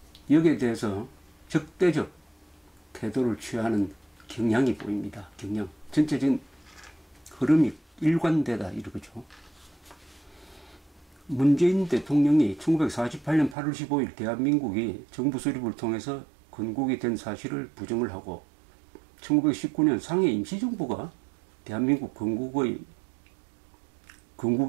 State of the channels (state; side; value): drops out; left; at 13.6 s